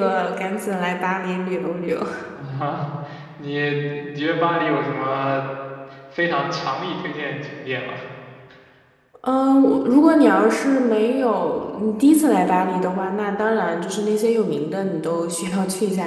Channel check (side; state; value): both; identical; correlation 1.00